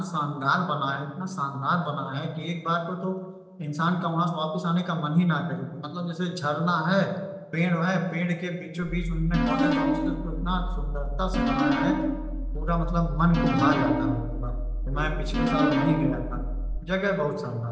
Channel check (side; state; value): both; identical; correlation 1.00